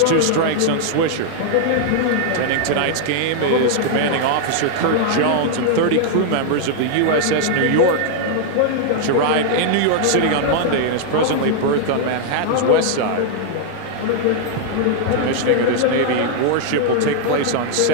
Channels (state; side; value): different; both; correlation 0.00